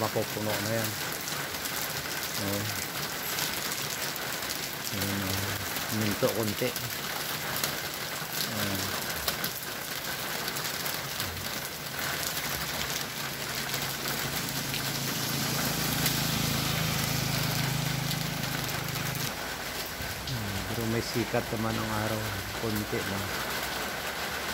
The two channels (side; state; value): both; identical; correlation 1.00